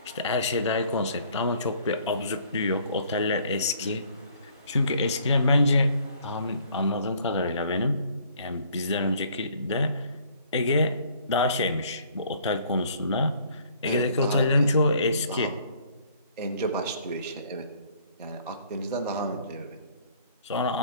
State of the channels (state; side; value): inverted; both; correlation -0.59